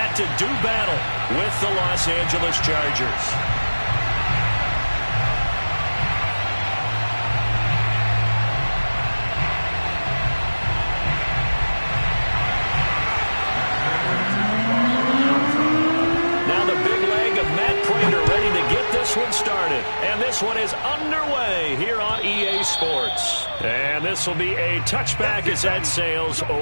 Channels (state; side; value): inverted; both; correlation -1.00